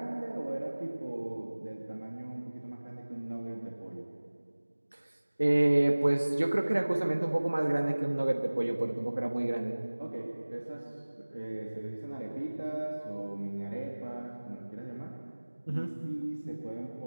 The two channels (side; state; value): both; inverted; correlation -1.00